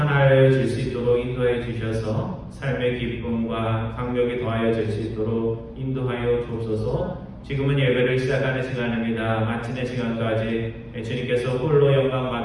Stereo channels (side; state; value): both; identical; correlation 1.00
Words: 질 수 있도록 인도해 주셔서 삶의 기쁨과 강력이 더하여 질 수 있도록 인도하여 주옵소서. 지금은 예배를 시작하는 시간입니다. 마치는 시간까지 주님께서 홀로 영광